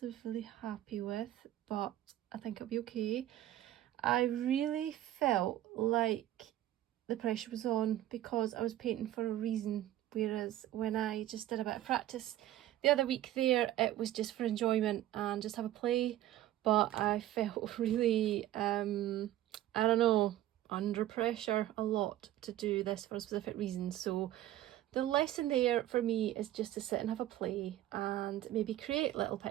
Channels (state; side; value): quieter; left; 13.8 dB